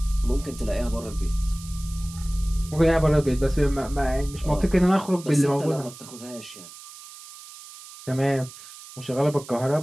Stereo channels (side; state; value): right; noise; hiss, 16 dB below the sound